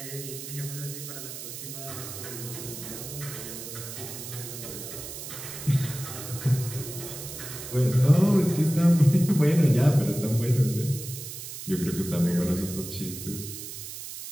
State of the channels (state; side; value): noise; right; hiss, 10 dB below the sound